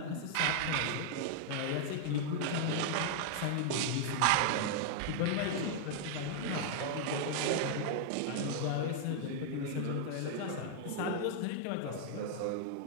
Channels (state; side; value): different; both; correlation 0.00